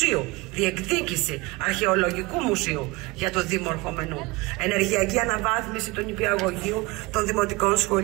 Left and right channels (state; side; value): quieter; left; 23.2 dB